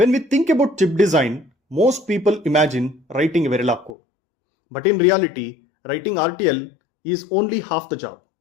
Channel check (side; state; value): right; drops out; at 4.0 s